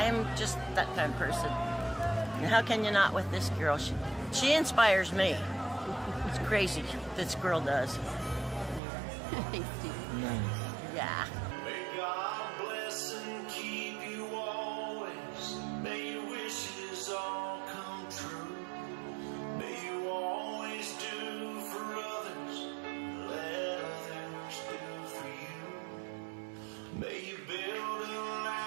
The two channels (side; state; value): left; drops out; at 8.8 s